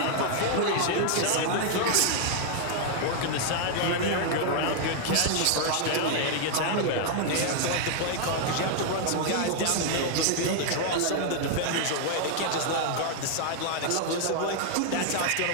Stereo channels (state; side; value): different; both; correlation 0.00